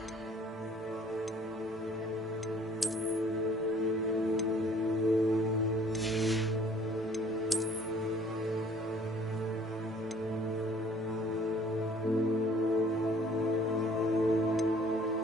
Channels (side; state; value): both; normal; correlation 0.55